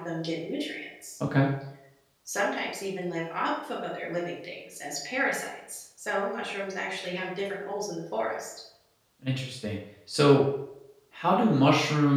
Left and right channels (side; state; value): both; identical; correlation 1.00